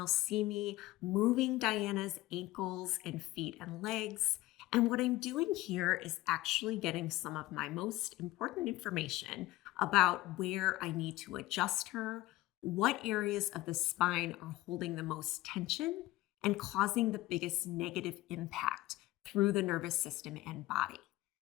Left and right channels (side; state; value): right; quieter; 17.7 dB